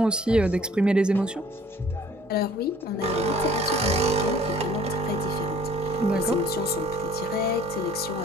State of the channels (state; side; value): normal; both; correlation 0.54